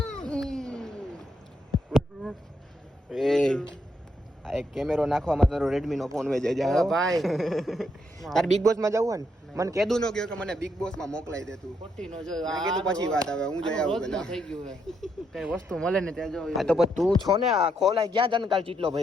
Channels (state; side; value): normal; both; correlation 0.77